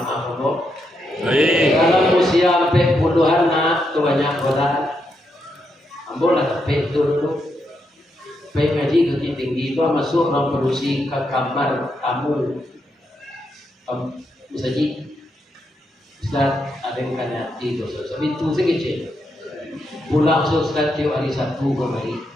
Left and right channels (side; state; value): both; normal; correlation 0.81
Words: kau. Kalau usia sampai puluhan nak kebanyak orang, ambil lah tapi dulu, baik ngaji tu tinggi itu masuk orang produksi ke kamar tamu, misalnya, ada yang kena di dosa, tapi itu sekecil, pulang sosial tiap hari Sabtu kembali,